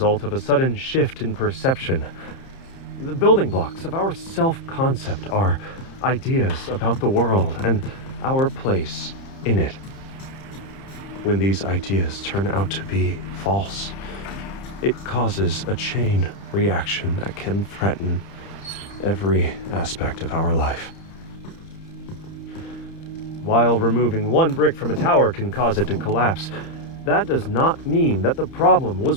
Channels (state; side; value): late; right; 30 ms